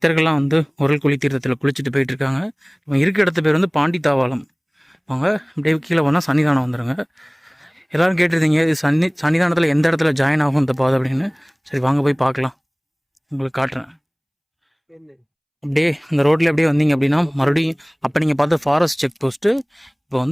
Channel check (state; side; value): identical; both; correlation 1.00